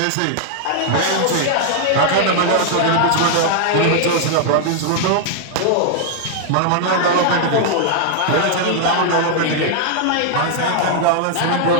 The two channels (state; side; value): different; both; correlation -0.01